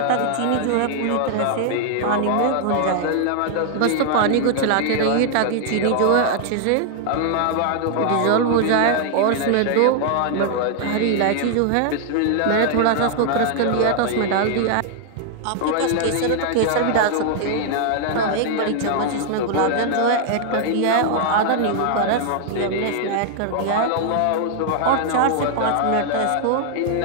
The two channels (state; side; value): different; both; correlation 0.00